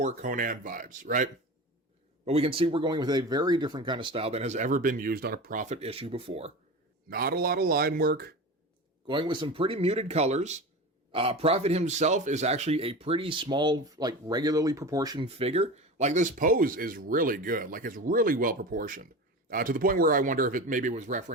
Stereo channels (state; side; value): normal; both; correlation 0.29